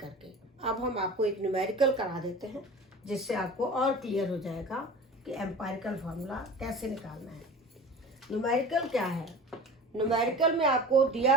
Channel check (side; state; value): both; normal; correlation 0.37